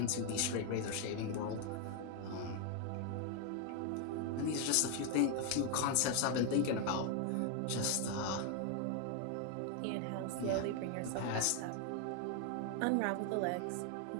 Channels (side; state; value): both; different; correlation 0.01